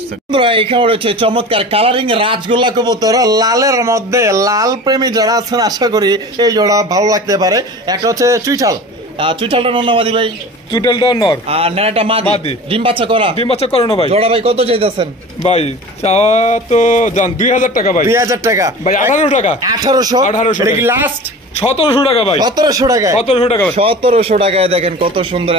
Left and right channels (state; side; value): normal; both; correlation 0.37